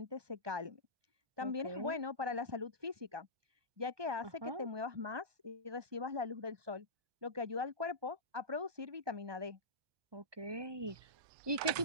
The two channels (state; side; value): late; left; 1.2 ms